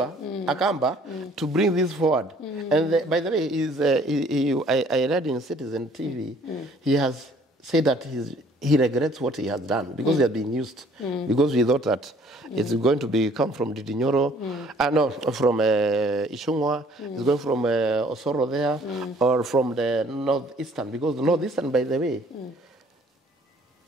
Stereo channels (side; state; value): both; normal; correlation 0.58